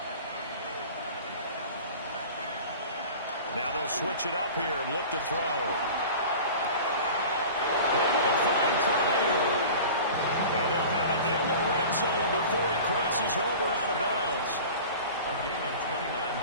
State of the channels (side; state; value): both; inverted; correlation -0.38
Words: Now they'll switch it up here and look to throw. Able to find Pryor. And they'll have it in the red zone before he crosses over out of bounds. A gain of 29